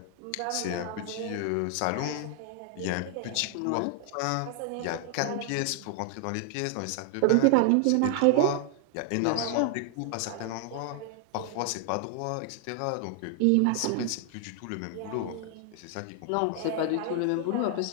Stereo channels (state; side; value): different; both; correlation 0.00